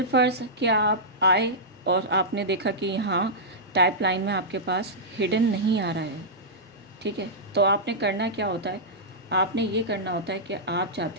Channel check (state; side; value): normal; both; correlation -0.11